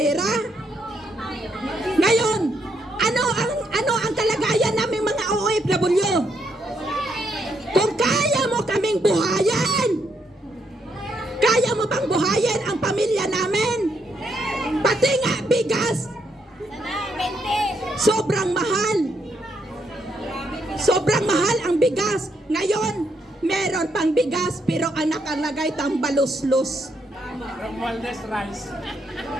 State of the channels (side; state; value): both; normal; correlation 0.76